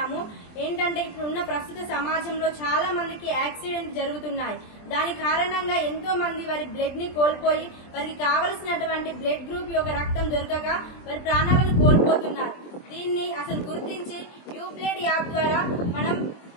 ఏంటంటే ఇప్పుడున్న ప్రస్తుత సమాజంలో చాలా మందికి యాక్సిడెంట్ జరుగుతున్నాయి. దాని కారణంగా ఎంతో మంది వారి బ్లడ్ ని కోల్పోయి వారికి కావలసినటువంటి బ్లడ్ గ్రూప్ యొక్క రక్తం దొరకక వారి ప్రాణాలను కోల్పోతున్నారు. దీన్ని అసలు గుర్తించి యూబ్లెడ్ యాప్ ద్వారా మనం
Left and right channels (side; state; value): right; late; 23 ms